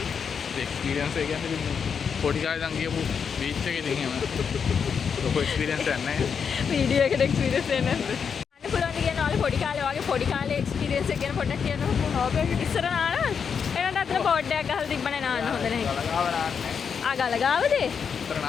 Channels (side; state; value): right; quieter; 6.6 dB